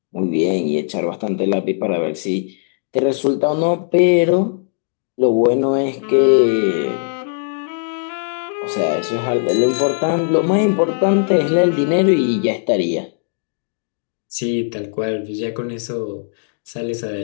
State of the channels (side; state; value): right; silent; digital silence